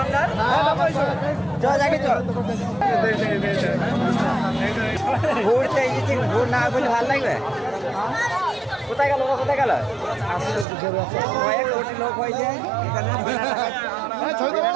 আপনার চল যাকে চল ঘুরতে এসেছি ঘুর না বলে ভালো লাগবে কোথায় গেল কোথায় গেল কয়েক কোটি লোক হয়েছে এখানে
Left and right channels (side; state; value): left; drops out; at 10.7 s